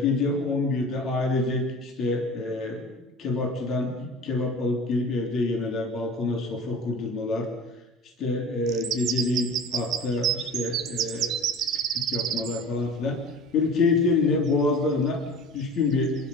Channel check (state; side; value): normal; both; correlation 0.39